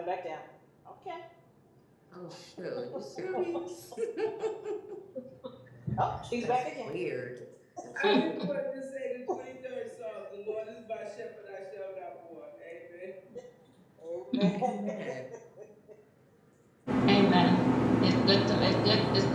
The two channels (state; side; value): identical; both; correlation 1.00